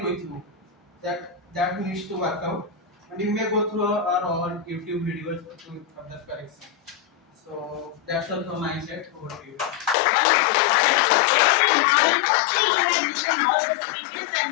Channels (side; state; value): right; drops out; at 10.0 s